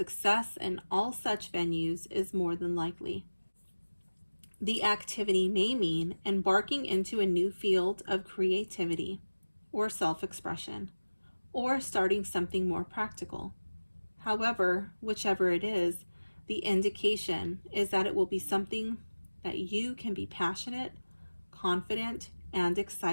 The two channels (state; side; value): inverted; both; correlation -1.00